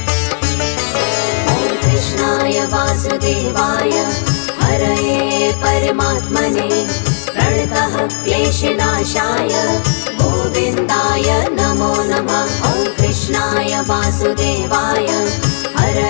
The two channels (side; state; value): right; silent; digital silence